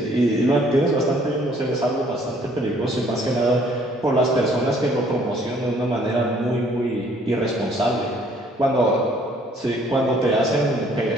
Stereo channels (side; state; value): both; normal; correlation 0.61